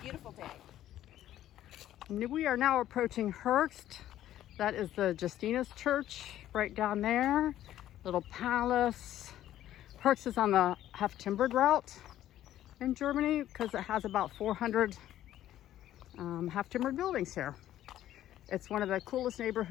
day. We are now approaching Höchst. That is the Justinus Church right down there. Little palace. Höchst is on the half-timbered route in Germany because it has about 400 half-timbered buildings here. It's one of the coolest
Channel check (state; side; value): quieter; right; 12.7 dB